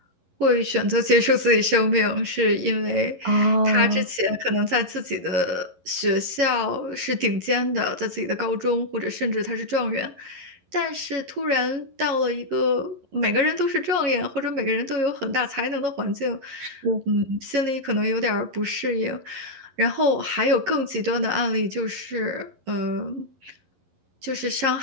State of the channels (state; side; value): late; left; 11 ms